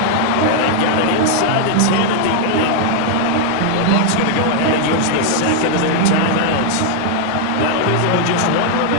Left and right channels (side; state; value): both; different; correlation 0.00